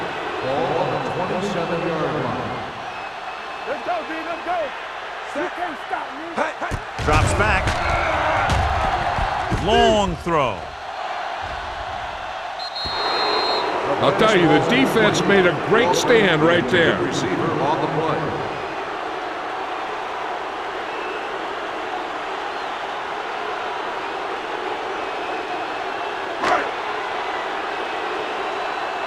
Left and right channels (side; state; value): both; identical; correlation 1.00